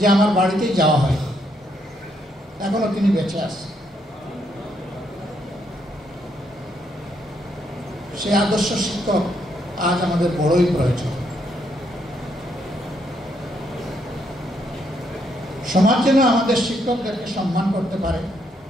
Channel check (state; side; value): normal; both; correlation 0.75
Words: আমার বাড়িতেই যাওয়া হয়। এখনো তিনি বেঁচে আছে। সে আদর্শ শিক্ষক আজ আমাদের বড়ই প্রয়োজন। সমাজ যেন আমাদের শিক্ষকদেরকে সম্মান করতে পারে,